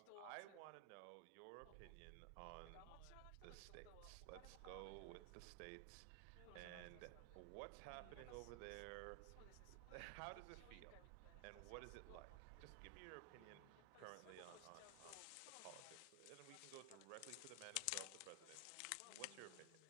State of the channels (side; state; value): both; different; correlation 0.00